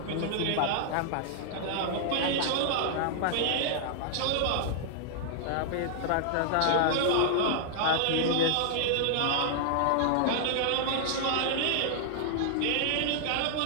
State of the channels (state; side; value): different; both; correlation -0.01